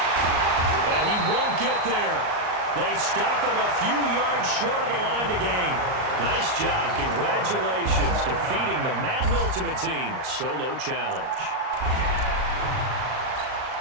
And he won't get there. They stop him a few yards short of the line to gain. Nice job. Congratulations. Defeating the Madden Ultimate Team solo challenge.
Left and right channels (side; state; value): left; late; 38 ms